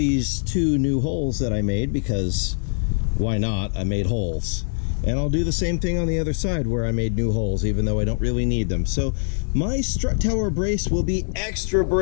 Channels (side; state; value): right; silent; 64 dB below the other